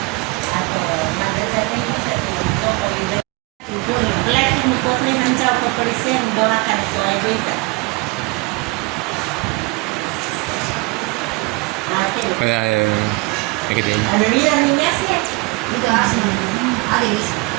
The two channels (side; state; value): left; quieter; 24.9 dB